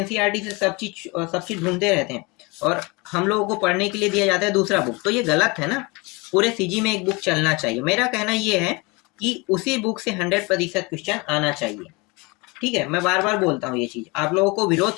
से सब चीज ढूंढते रहते हैं, और हम लोगों को पढ़ने के लिए दिया जाता है दूसरा बुक। तो ये गलत है ना, पूरे सीजी में एक बुक चलना चाहिए। मेरा कहना ये है कि उसी बुक से 100% क्वेश्चन आना चाहिए, ठीक है। मैं बार बार बोलता हूँ ये चीज, आप लोगों को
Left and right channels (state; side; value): quieter; right; 26.7 dB